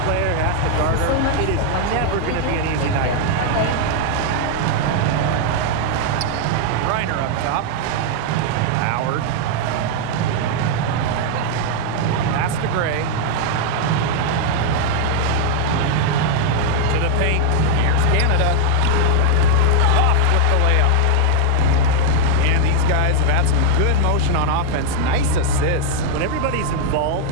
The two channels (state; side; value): different; both; correlation 0.00